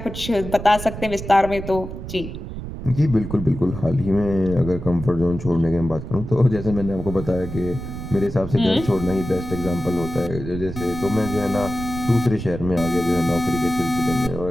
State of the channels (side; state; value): right; noise; rumble, 9 dB below the sound